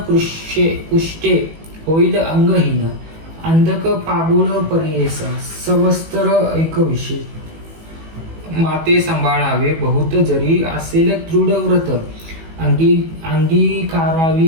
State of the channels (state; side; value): late; left; 18 ms